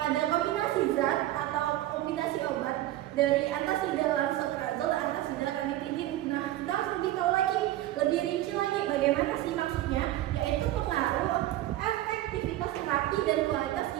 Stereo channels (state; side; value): quieter; left; 14.8 dB